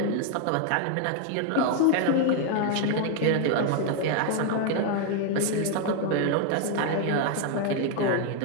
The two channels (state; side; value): different; both; correlation 0.00